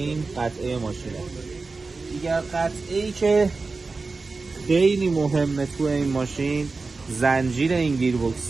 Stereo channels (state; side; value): quieter; left; 3.9 dB